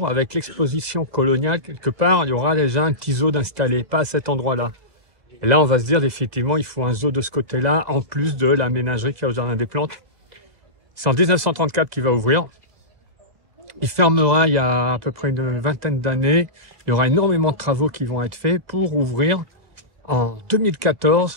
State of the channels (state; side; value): late; left; 1.7 ms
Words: avec l'exposition coloniale quelque part. Il y aura déjà un petit zoo d'installé, pas à cet endroit-là. Et là, on va se dire effectivement, il faut un zoo de ce côté-là, en plus de la ménagerie qu'il y a au Jardin des Plantes. C'est en 1934 qu'il va ouvrir. Il fermera il y a à peu près une vingtaine d'années. Il y aura énormément de travaux qui vont être faits pour ouvrir en